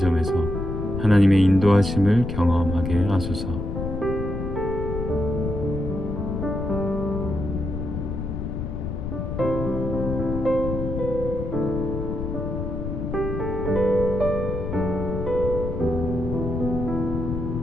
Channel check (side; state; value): left; noise; rumble, 4 dB below the sound